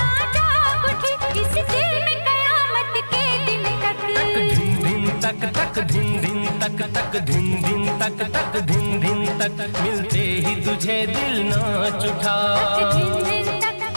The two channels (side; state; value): both; inverted; correlation -1.00